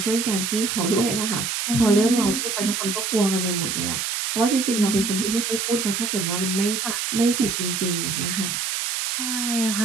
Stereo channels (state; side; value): noise; right; hiss, 1 dB below the sound